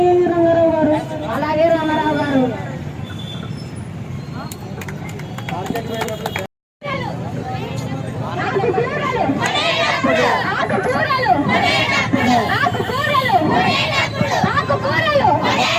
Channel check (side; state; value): both; identical; correlation 1.00